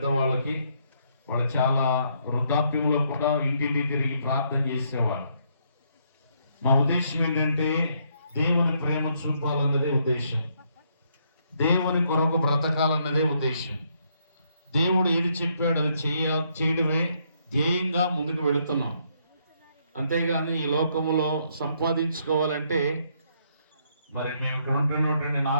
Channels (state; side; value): inverted; both; correlation -0.72